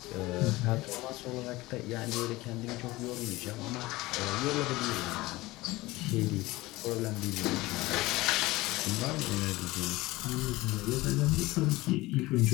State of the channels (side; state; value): right; quieter; 19.8 dB